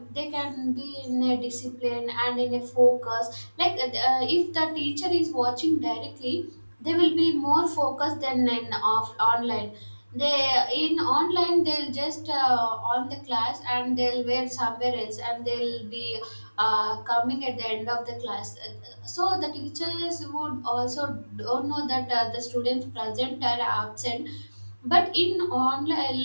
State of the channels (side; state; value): both; inverted; correlation -1.00